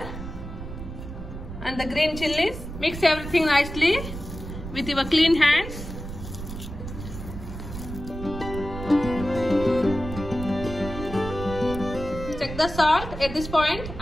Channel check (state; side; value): noise; right; rumble, 9 dB below the sound